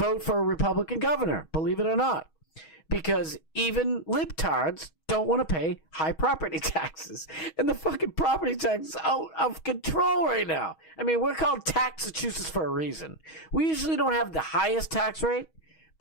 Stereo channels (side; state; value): right; late; 6.3 ms